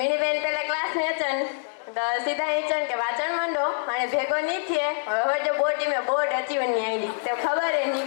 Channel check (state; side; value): silent; right; digital silence